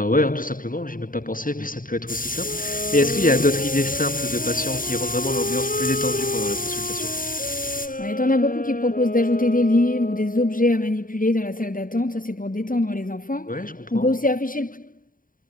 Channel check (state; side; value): late; right; 0.40 ms